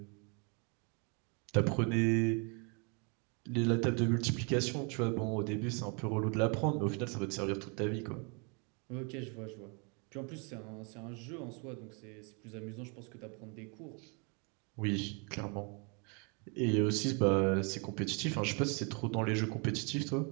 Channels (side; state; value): left; quieter; 34.3 dB